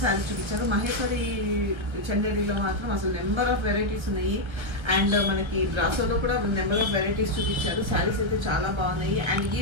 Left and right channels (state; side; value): late; left; 1.3 ms